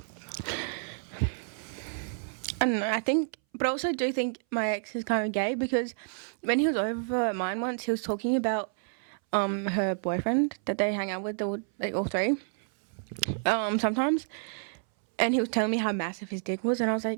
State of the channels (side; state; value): left; silent; 58 dB below the other